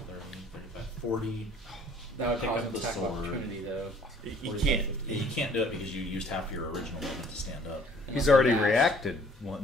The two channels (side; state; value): both; normal; correlation 0.57